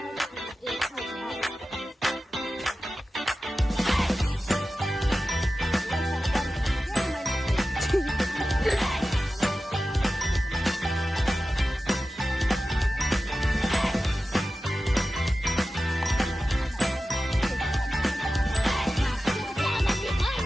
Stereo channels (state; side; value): normal; both; correlation 0.94